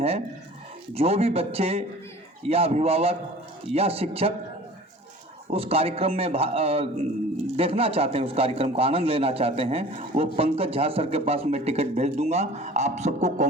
जो भी बच्चे या अभिभावक या शिक्षक उस कार्यक्रम में देखना चाहते हैं, उस कार्यक्रम का आनंद लेना चाहते हैं, वो पंकज झा सर के पास मैं टिकट भेज दूंगा। आप सबको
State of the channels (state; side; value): normal; both; correlation 0.44